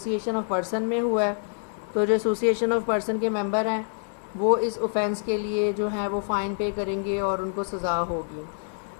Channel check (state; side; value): silent; right; digital silence